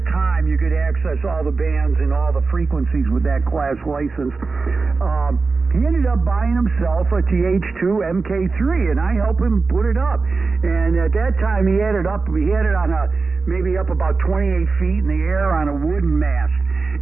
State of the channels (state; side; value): quieter; left; 4.2 dB